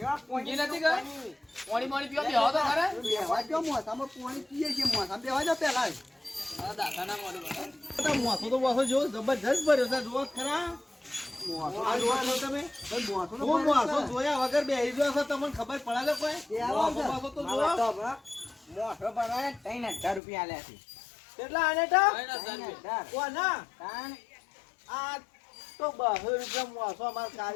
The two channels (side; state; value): right; drops out; at 20.2 s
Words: ઊંઘી નથી કે પાણી પાણી પીવા બેહો તો ખરે બેહવા દો, મોથામાં પાણી પીએ છીએ, મોથામાં બેહવા દો પહેલા જ. આ દાદાના મોઢું બતાવો. તો મોસો તો મોસો જો જબરજસ્ત ભર્યો છે જુઓ ખરા મોથો આ જુઓ છો તમે ભાઈ મોથો તો હું ભરે મોસો છે. જોયા વગર બેહી ગયો છો તમને ખબર પડે છે કોઈ એ આવો છે. મોસો તો જુઓ મોટો ભરવા 3000 રૂપિયા આલ્યા છે કેટલા આને ટા કઈ ના ચાલ. કોના તાણ આ તો 200 રૂપિયા મોસો અમાર